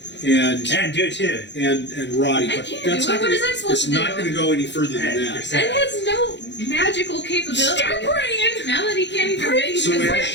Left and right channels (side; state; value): right; late; 0.52 ms